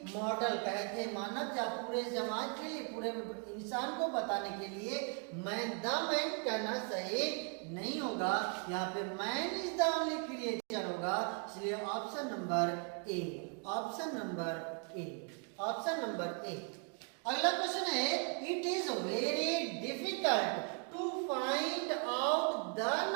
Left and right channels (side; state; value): left; quieter; 39.0 dB